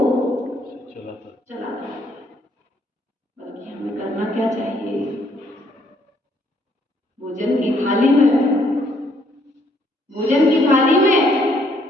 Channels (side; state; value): both; normal; correlation 0.68